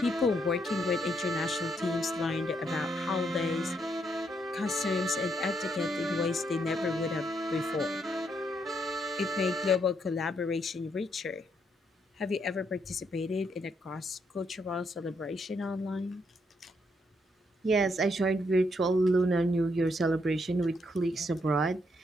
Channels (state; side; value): normal; both; correlation 0.75